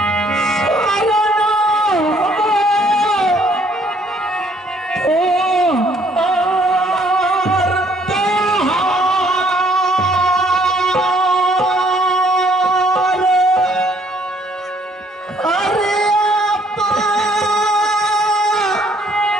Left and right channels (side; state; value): both; normal; correlation 0.64